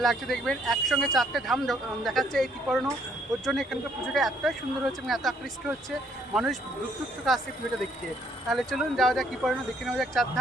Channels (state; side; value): normal; both; correlation 0.67